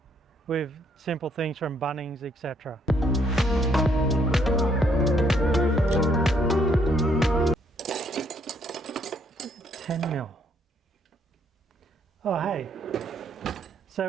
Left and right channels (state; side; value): normal; both; correlation 0.69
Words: with simple things from Bunnings, etc. 10mm. Oh hey,